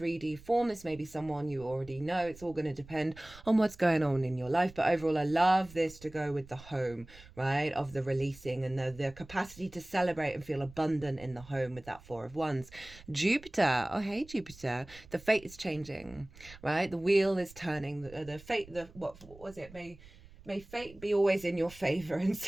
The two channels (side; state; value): right; noise; rumble, 21 dB below the sound